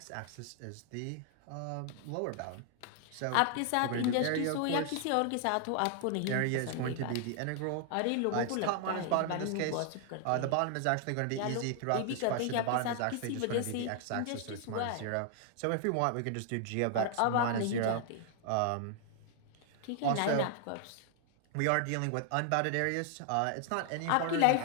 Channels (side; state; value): both; different; correlation 0.00